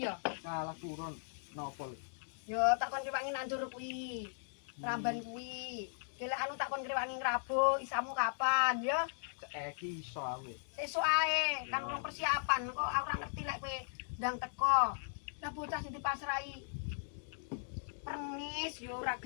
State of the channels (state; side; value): silent; right; digital silence